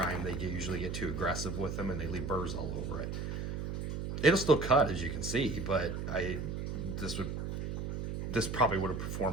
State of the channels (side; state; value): right; noise; hum, 4 dB below the sound